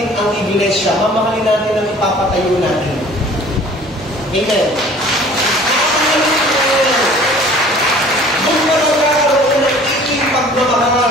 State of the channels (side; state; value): both; normal; correlation 0.49